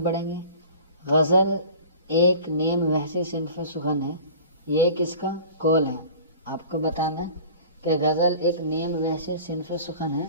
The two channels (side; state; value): both; inverted; correlation -0.42